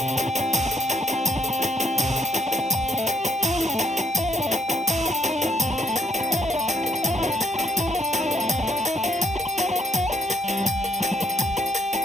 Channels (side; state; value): both; normal; correlation 0.72